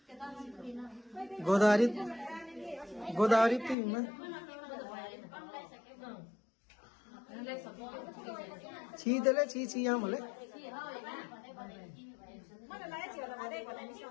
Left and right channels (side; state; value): right; drops out; at 3.8 s